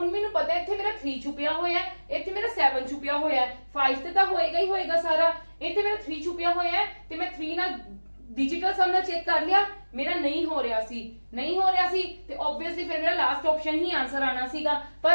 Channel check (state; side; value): inverted; both; correlation -1.00